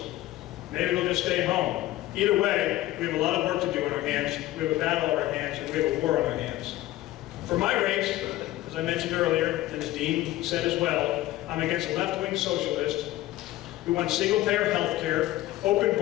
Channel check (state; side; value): quieter; right; 15.8 dB